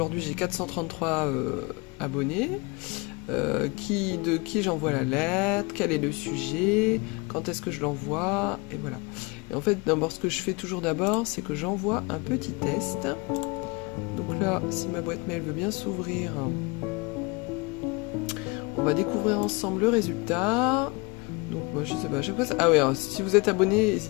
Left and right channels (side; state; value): right; quieter; 27.4 dB